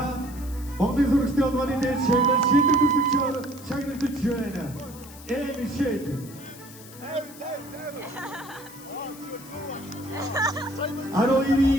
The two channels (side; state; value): left; noise; hiss, 18 dB below the sound